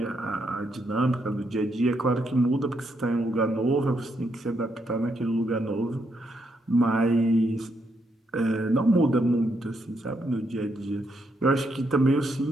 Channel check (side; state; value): both; normal; correlation 0.78